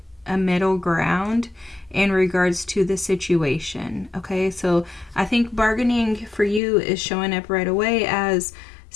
a middle ground in regards to the situation. Okay, so I think bargaining for you is showing up right away as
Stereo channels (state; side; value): drops out; right; at 6.6 s